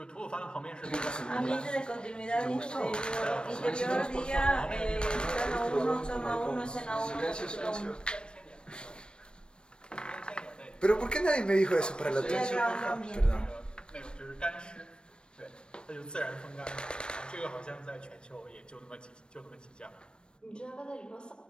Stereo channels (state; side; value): late; right; 0.054 ms